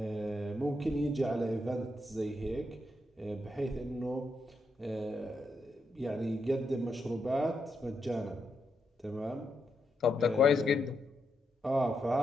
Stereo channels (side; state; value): both; normal; correlation 0.82